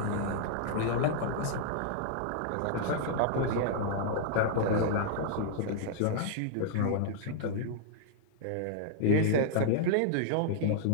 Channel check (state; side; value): different; both; correlation -0.01